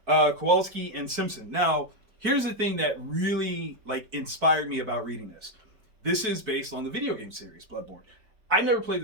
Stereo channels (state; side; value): late; left; 4.6 ms